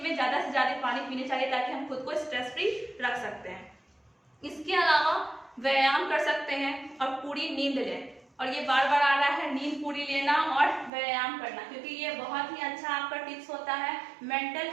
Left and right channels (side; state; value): left; drops out; at 10.9 s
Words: में ज़्यादा से ज़्यादा पानी पीने चाहिए ताकि हम खुद को स्ट्रेस फ्री रख सकते हैं। इसके अलावा व्यायाम कर सकते हैं और पूरी नींद लें, और ये बार बार आ रहा है, नींद पूरी लेना और व्यायाम करना, क्योंकि ये बहुत ही अच्छा आपका टिप्स होता है मेंटल